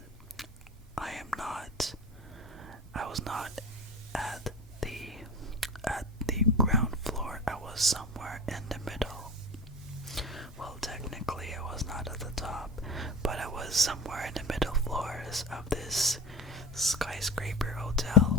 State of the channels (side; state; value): both; normal; correlation 0.32